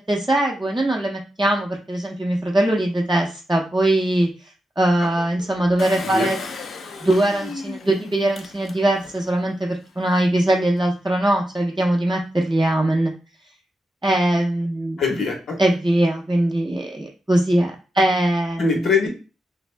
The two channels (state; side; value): normal; both; correlation 0.87